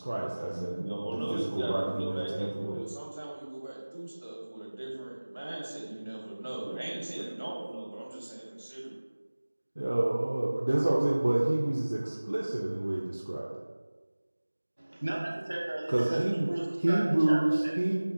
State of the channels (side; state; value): both; inverted; correlation -1.00